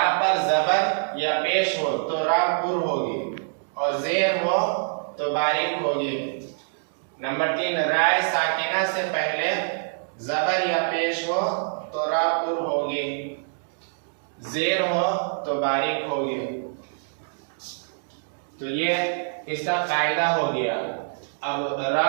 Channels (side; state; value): left; silent; digital silence